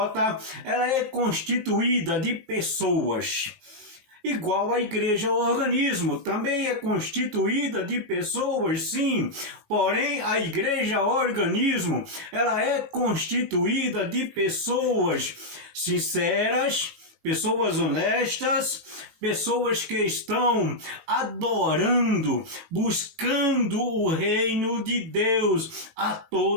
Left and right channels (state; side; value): late; left; 18 ms